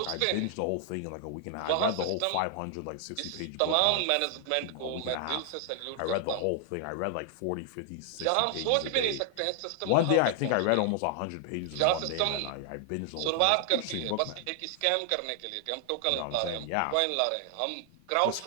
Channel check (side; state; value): both; different; correlation 0.00